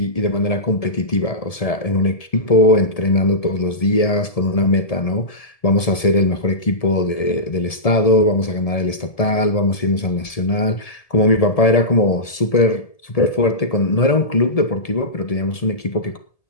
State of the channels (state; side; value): late; right; 1.7 ms